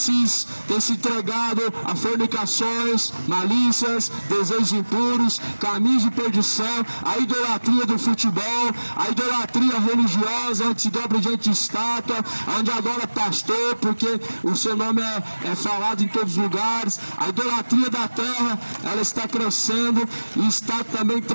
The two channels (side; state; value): both; inverted; correlation -1.00